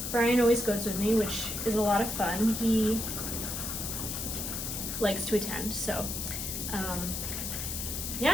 Brian always goes with me, which is a lot of fun. He likes to attend, so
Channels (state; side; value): noise; left; hiss, 4 dB below the sound